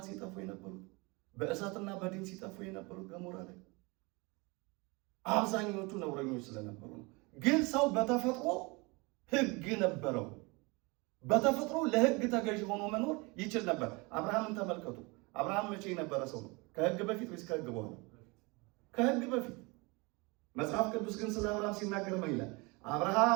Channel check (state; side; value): quieter; left; 26.9 dB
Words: ሲጠፉ የነበሩት፣ በእሳትና በዲን ሲጠፉ የነበሩት ገሞራ ላይ አብዛኞቹ ነውረኞች ስለነበሩ ነው። ግን ሰው በተፈጥሮ ሕግ ነበረው። በተፈጥሮ ለሕግ ተገዥ ሆኖ መኖር ይችል ነበር። አብርሃምን ተመልከቱ። አብርሃም መቼ የነበረ ሰው ነው? ከሕግ በፊት ወይስ ከሕግ በኋላ? ከሕግ በፊት። መጽሐፍ ቅዱስ ግን ስለ አብርሃም ሲናገር ምን ይላል?